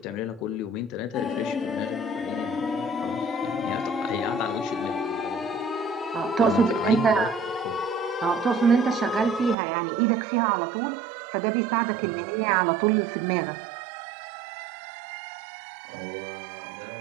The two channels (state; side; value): drops out; left; at 9.6 s